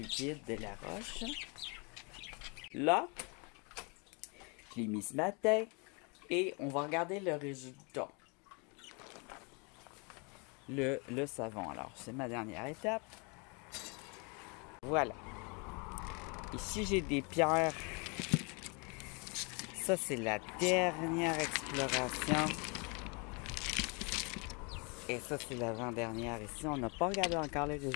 de la roche. Là, je l'ai mis ce matin et on va regarder le résultat. Le savon. Alors, c'est ma dernière étape. Voilà. Ici, j'ai des pierres. Ça, c'est la dernière exploration. Et ça, c'est l'avant-dernière. Ici, on n'a pas regardé encore les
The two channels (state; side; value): quieter; right; 32.3 dB